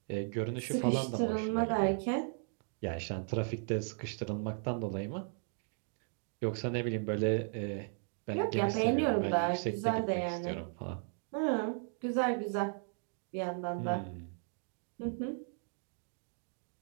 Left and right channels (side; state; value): left; silent; 54 dB below the other